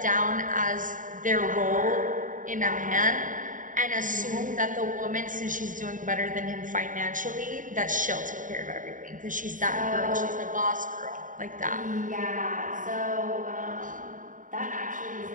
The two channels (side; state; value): left; late; 0.38 ms